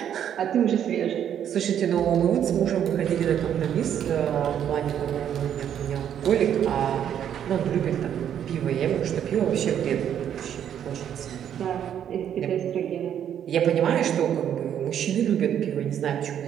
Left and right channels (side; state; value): left; quieter; 9.5 dB